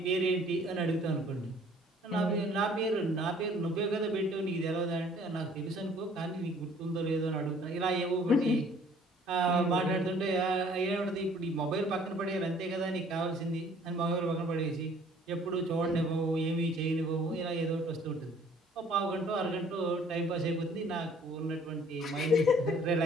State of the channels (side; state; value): both; normal; correlation 0.56